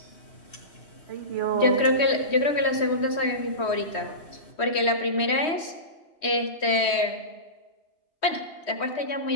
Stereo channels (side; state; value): right; late; 3.1 ms